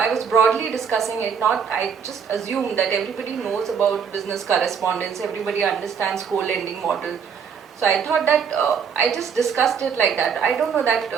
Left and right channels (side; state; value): left; quieter; 6.9 dB